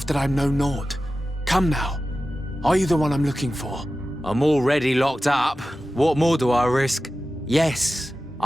that I'm no Nord. Come now. Are you the one I'm looking for? I'm already locked up. What more do I risk? Yes,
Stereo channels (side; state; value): both; normal; correlation 0.94